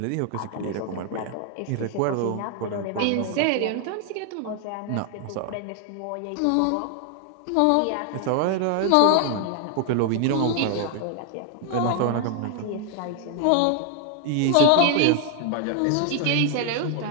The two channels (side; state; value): both; different; correlation 0.00